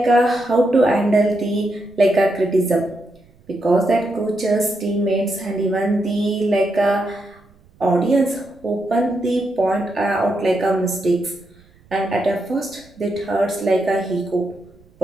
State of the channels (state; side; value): noise; right; rumble, 29 dB below the sound